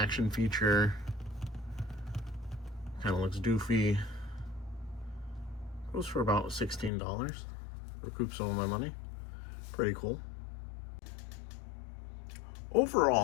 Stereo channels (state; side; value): drops out; right; at 6.9 s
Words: feature. Kind of looks doofy. Goes for about $16. Recoup some of my money. Pretty cool.